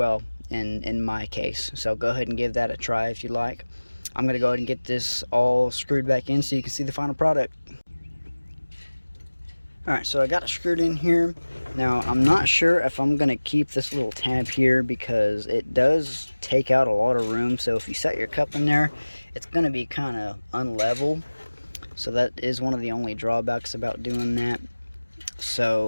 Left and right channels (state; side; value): inverted; both; correlation -1.00